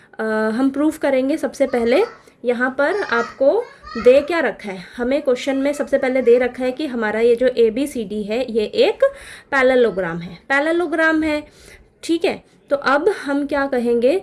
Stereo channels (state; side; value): identical; both; correlation 1.00